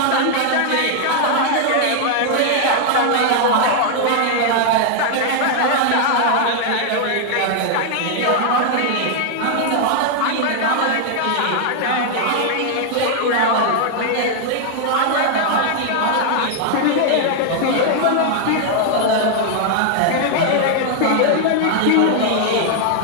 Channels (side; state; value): both; different; correlation 0.00